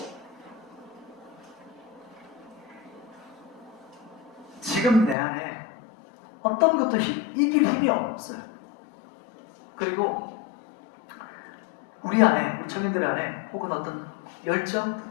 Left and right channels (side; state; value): right; drops out; at 5.2 s